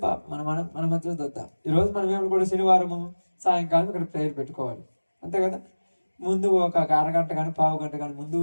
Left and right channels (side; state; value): both; inverted; correlation -1.00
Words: మన మధ్యలో చూద్దాం. ఈరోజు మనం ఏమి కూడా శనివారము సాయంకాలం ఇక్కడ ప్రేయర్ పెట్టుకోవాలి, అంతే కదా? ముందు ఒక అరగంట కానీ పావు గంట కానీ